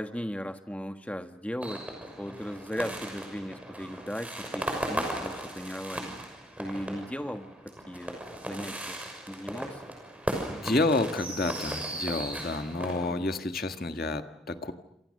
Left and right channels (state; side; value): normal; both; correlation 0.62